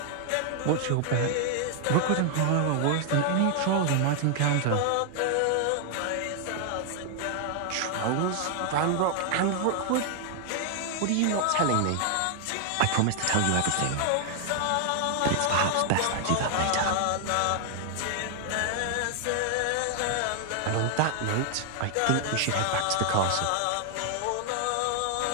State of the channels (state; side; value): different; both; correlation 0.00